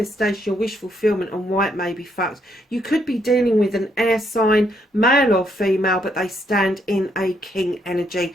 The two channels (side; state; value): both; normal; correlation 0.74